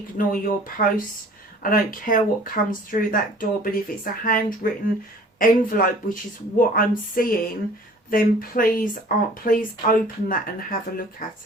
your posts. I don't care what comes through that door, but if it's a handwritten envelope, which is what I'm seeing, then please open that and have a look at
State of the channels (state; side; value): normal; both; correlation 0.50